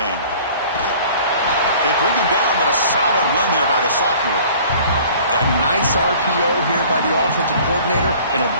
They bring him down, but a solid run there by the sophomore. A nice RPO here by the offensive coordinator and a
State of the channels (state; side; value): inverted; both; correlation -0.49